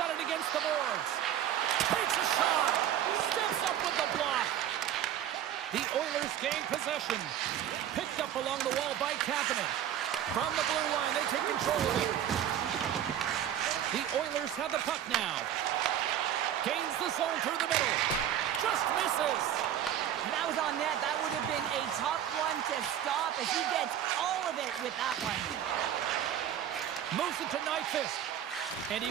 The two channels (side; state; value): left; quieter; 10.6 dB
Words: it against the boards. Takes a shot. Steps up with the block. The Oilers gain possession. Picked up along the wall by Kapanen. From the blue line, they take control of it. The Oilers have the puck now. Gains the zone through the middle. Just misses. If that was on net, that would have been a tough one to stop as he gets all of it with that one. Moves it to Nyquist. And he